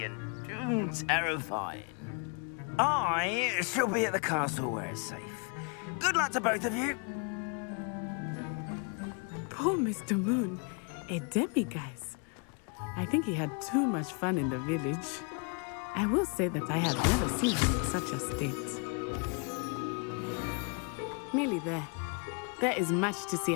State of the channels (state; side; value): quieter; right; 36.9 dB